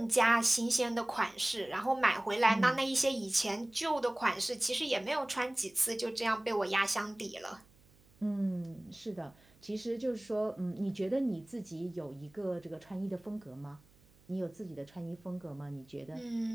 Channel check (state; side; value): noise; right; hum, 29 dB below the sound